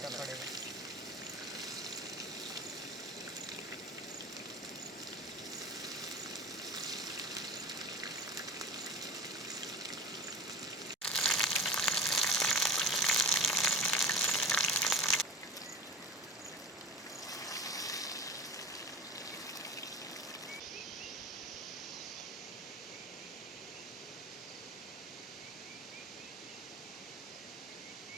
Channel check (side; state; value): both; normal; correlation 0.31